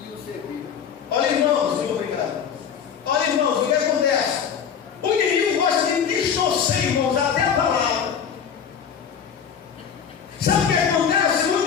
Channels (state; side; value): quieter; right; 7.5 dB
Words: e o serviram. Olha, irmãos, muito obrigado. Olha, irmãos, o que acontece? O inimigo gosta de distorcer, irmãos, até a palavra. Sabe o que acontece?